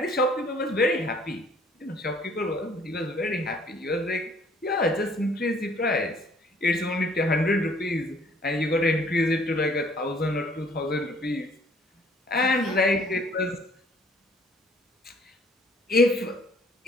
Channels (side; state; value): both; normal; correlation 0.58